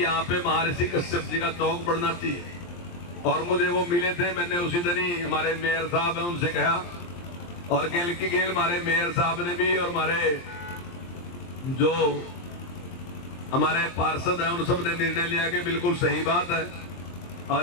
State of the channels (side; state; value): right; late; 23 ms